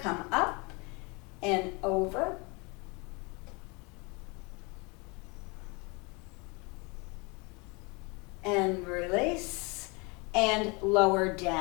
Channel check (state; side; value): quieter; right; 29.0 dB